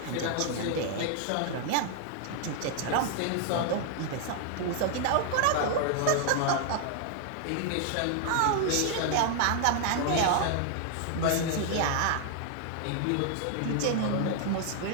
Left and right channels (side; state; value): both; different; correlation 0.00